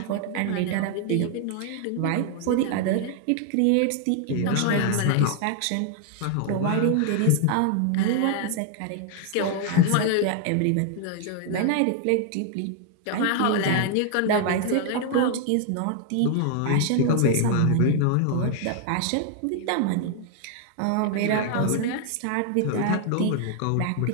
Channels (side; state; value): both; different; correlation 0.00